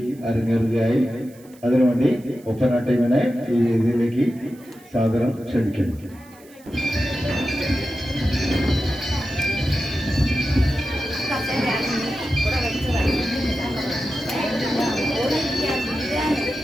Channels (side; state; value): right; noise; hiss, 26 dB below the sound